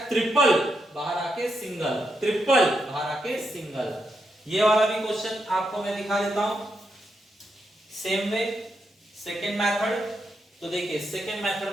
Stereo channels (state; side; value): normal; both; correlation 0.83